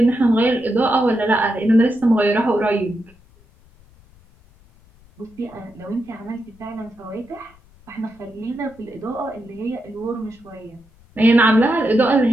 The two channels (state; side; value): noise; left; rumble, 28 dB below the sound